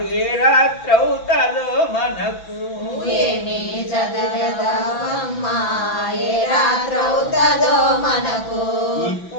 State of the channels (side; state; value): right; late; 6.0 ms